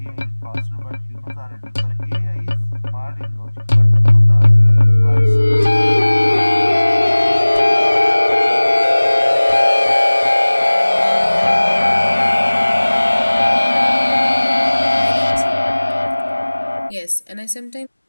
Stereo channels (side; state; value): both; inverted; correlation -1.00